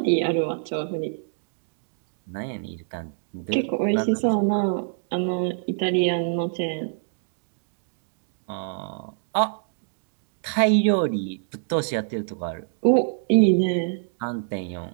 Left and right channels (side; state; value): left; silent; digital silence